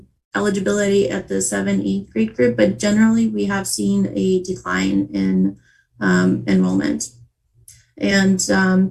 eligibility at the 7-8 grade group, but generally we have seen a decline in enrollment. And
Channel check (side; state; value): both; identical; correlation 1.00